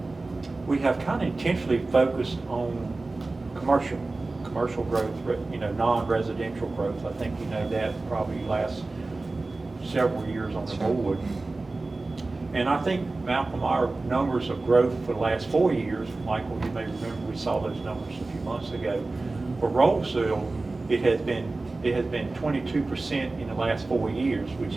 We have kind of intentionally focused on commercial growth, non-residential growth. I think that probably lasts several years on the board. And I think, Malcolm, our numbers of growth for the last 4 years, Michael, you may remember we saw those numbers a few months ago. For Roseville, it has been 22% in the last 4 years, which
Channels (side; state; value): left; quieter; 3.3 dB